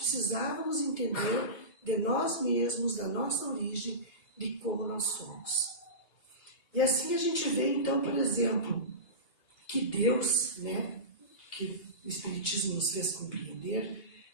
entender de nós mesmos, da nossa origem, de como nós somos. E assim a gente vê, então, por exemplo, que Deus, que o Espiritismo nos fez compreender,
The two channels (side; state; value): right; late; 2.8 ms